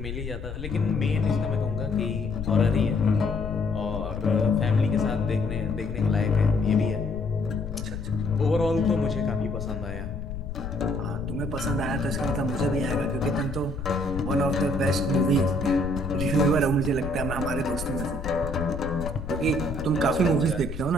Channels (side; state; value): left; noise; rumble, 7 dB below the sound